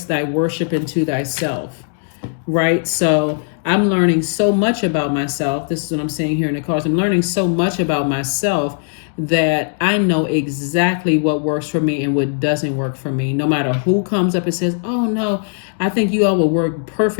thy worship into thyself. Right? So I'm learning so much about myself. This is what I'm saying here in the cards. I'm learning so much about myself that I know exactly what works for me and what doesn't work for me. No matter who comes up and says, oh no, I think you all will work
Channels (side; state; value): right; silent; digital silence